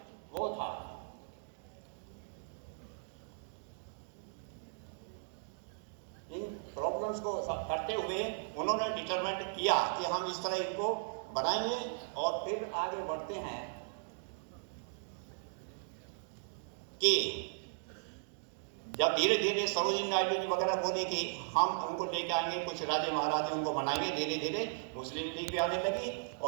वो था इन प्रॉब्लम्स को करते हुए उन्होंने डिटरमाइन किया कि हम इस तरह इनको बनाएंगे और फिर आगे बढ़ते हैं कि जब धीरे धीरे सरोजिनी नायडू जी वगैरह बोले कि हम उनको लेके आएंगे, कुछ राजे महाराजे उनको बनाएंगे, धीरे धीरे मुस्लिम लीग भी आने लगी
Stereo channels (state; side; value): silent; left; digital silence